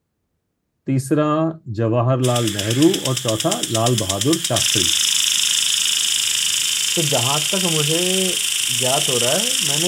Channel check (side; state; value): both; identical; correlation 1.00